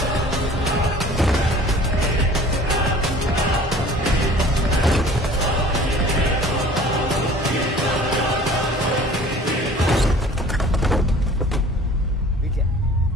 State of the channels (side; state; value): both; normal; correlation 0.47